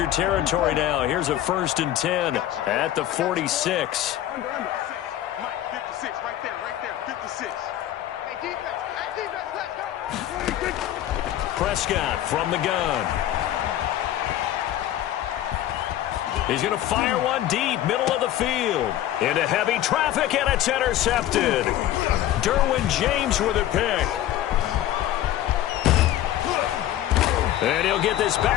territory now, here's a 1st and 10 at the 46. Mike, 56, right there, 56. Hey, defense, let's go. Prescott from the gun. He's going to fire one deep, middle of the field. Into heavy traffic, and it's intercepted. Derwin James with a pick. And he'll get this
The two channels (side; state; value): right; quieter; 12.7 dB